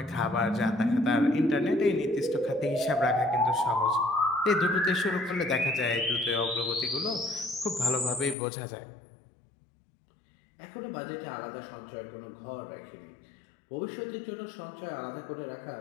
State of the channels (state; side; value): drops out; right; at 8.3 s